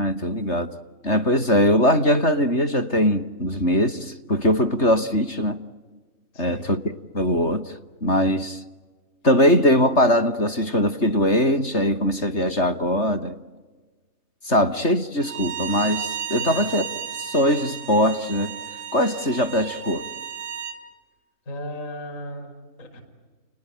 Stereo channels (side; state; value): right; late; 3.3 ms